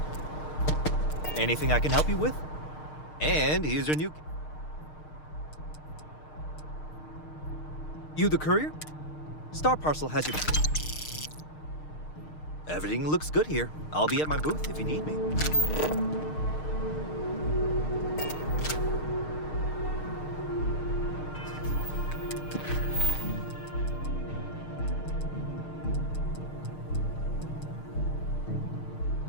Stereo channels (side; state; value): right; late; 6.5 ms